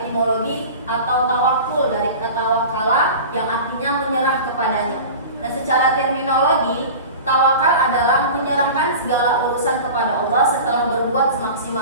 atau tawakul dari kata wakala yang artinya menyerah kepadanya. Dan secara terminologi, tawakal adalah menyerahkan segala urusan kepada Allah setelah berbuat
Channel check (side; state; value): both; inverted; correlation -0.35